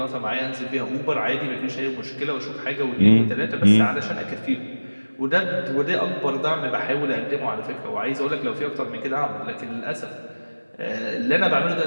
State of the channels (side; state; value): both; inverted; correlation -1.00